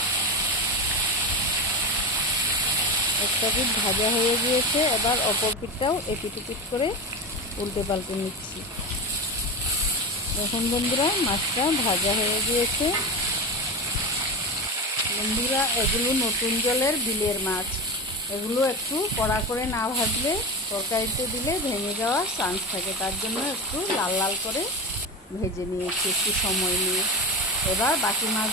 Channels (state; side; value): normal; both; correlation 0.23